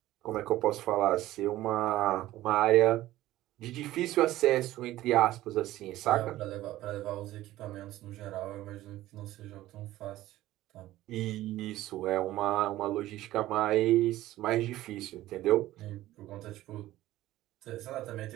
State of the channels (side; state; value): left; quieter; 15.5 dB